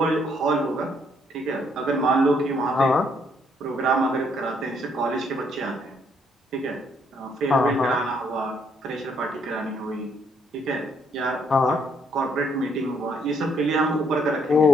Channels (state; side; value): normal; both; correlation 0.70